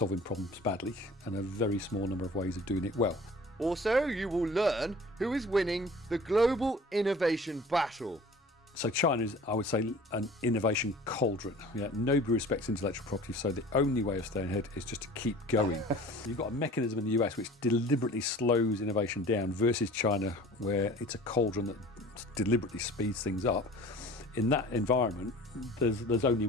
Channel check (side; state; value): both; normal; correlation 0.44